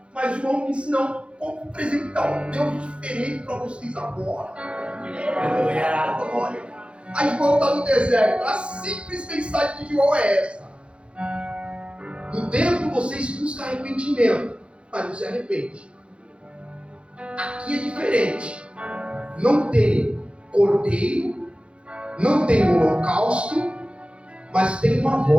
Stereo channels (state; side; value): late; left; 0.059 ms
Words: Mas João disse, não, vou apresentar um Deus diferente para vocês agora. Glória. Aí João está no deserto. A simples mensagem de João é essa. No templo vocês buscam arrependimento, mas não se arrepende. Aqui é diferente. Não tem cordeiro, não tem holocausto, mas tem uma